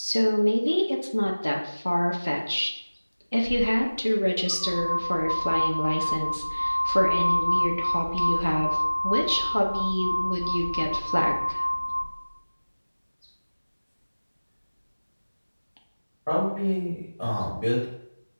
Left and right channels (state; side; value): inverted; both; correlation -1.00